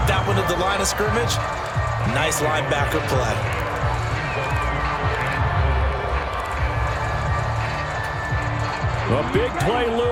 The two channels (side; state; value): both; identical; correlation 1.00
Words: that one at the line of scrimmage. Nice linebacker play. A big play